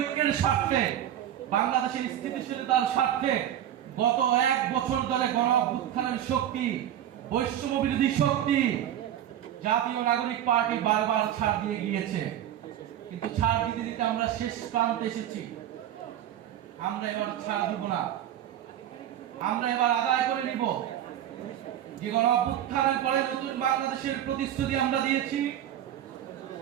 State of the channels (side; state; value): left; quieter; 11.2 dB